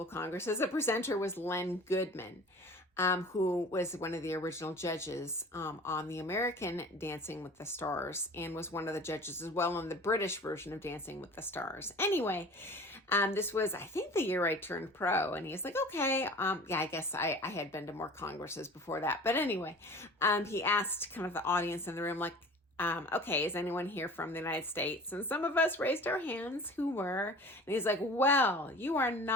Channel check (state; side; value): normal; both; correlation 0.42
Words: Congresses, a presenter was Len Goodman. Who was one of the original judges on the American Dancing with the Stars and was one of the judges as well on the British version of Dancing with the Stars. Anyway, this was, I think, the year I turned pro, and he's like, okay, yeah, I guess I had been to more congresses before that. But anyway, he asked kind of the audience in the room, like, okay, is anyone here from the United States? And some of us raised our hands who were. And he's like, well, you are